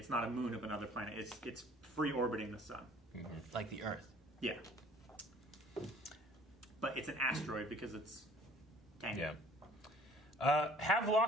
not a moon of another planet. It's free orbiting the sun. Mm-hmm. Like the Earth. Yeah. But it's an asteroid because it's tiny. Yeah.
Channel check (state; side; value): normal; both; correlation 0.54